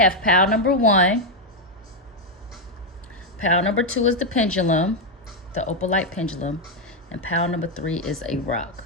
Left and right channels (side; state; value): both; normal; correlation 0.02